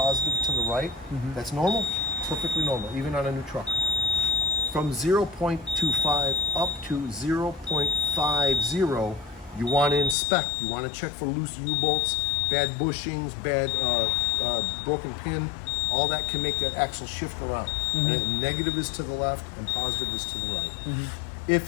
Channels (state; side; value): drops out; right; at 10.2 s